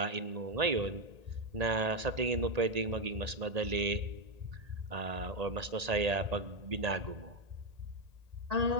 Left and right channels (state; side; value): late; left; 1.8 ms